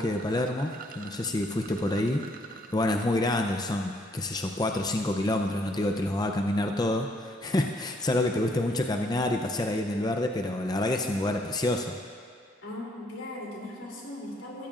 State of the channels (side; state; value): both; normal; correlation 0.68